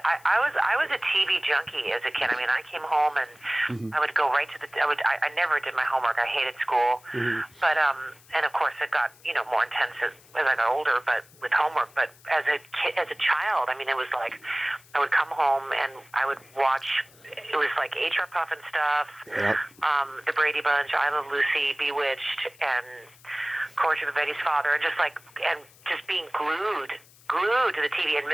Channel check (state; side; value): noise; left; hiss, 26 dB below the sound